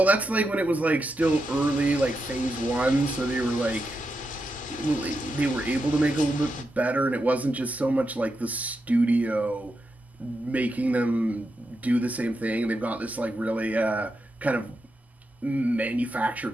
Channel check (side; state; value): both; normal; correlation 0.86